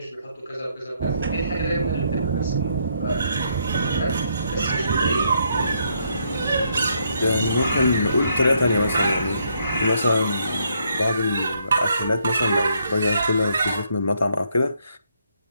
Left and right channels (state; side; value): inverted; both; correlation -0.73